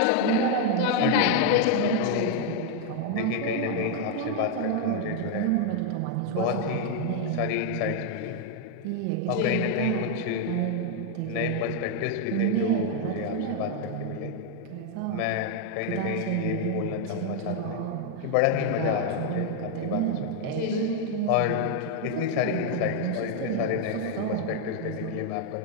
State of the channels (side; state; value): both; different; correlation 0.00